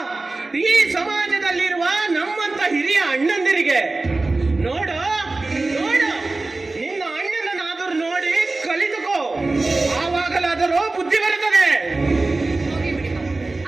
ಈ ಸಮಾಜದಲ್ಲಿರುವ ನಮ್ಮಂತ ಹಿರಿಯ ಅಣ್ಣಂದಿರಿಗೆ. ನೋಡು ನೋಡು, ನಿನ್ನ ಅಣ್ಣನನ್ನಾದರೂ ನೋಡಿ ಕಲಿತುಕೋ, ಆವಾಗಲಾದರೂ ಬುದ್ಧಿ ಬರುತ್ತದೆ. ಹೋಗಿ ಬಿಡಿ ಮಾಮ.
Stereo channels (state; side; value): quieter; left; 3.3 dB